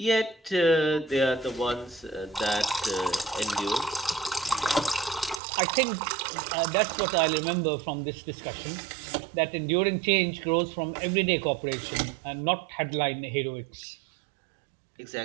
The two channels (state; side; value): drops out; left; at 5.4 s